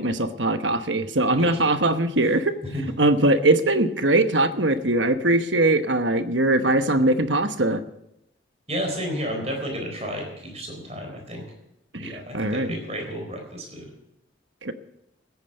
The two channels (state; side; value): normal; both; correlation 0.10